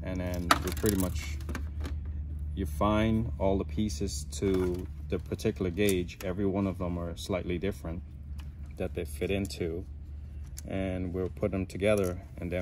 And then you pretty much, you find all the pieces to the particular gauge. Every one of them are slightly different that they fit into, and we'll put them together and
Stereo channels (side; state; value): both; identical; correlation 1.00